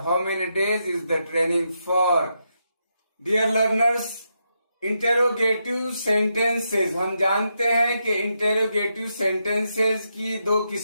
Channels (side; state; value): both; inverted; correlation -0.83